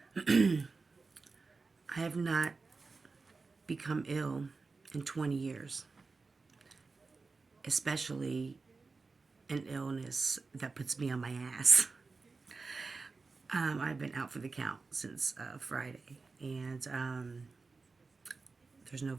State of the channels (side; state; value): left; quieter; 4.1 dB